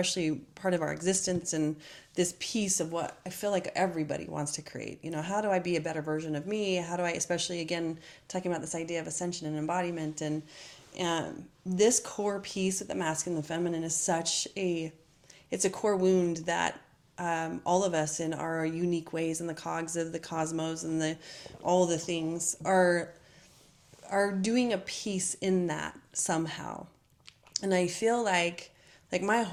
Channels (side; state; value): both; identical; correlation 1.00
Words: part of our existence and this piece of what I feel like everybody wants to create, you know, how do I be a better version of me? How do I, especially again, talking about this idea of ascension and embodiment This core piece of the masculine and the feminine is it's a core wound that all of us in our unique ways in the cogs of the cosmos and all the things are doing a piece in that somehow. And I feel like my